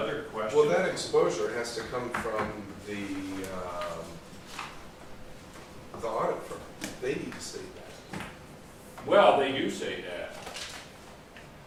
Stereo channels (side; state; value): both; identical; correlation 1.00